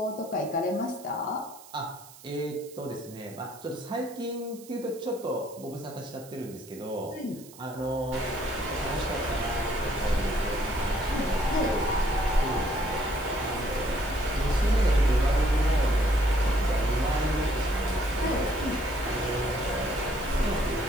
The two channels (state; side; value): noise; right; hiss, 20 dB below the sound